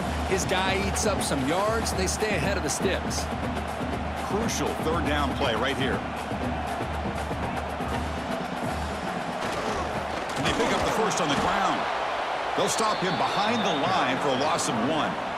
His guy eats up some yards. They stay ahead of the sticks. Crucial third down play right here. And they pick up the first on the ground. They'll stop him behind the line for a loss of 1.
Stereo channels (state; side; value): identical; both; correlation 1.00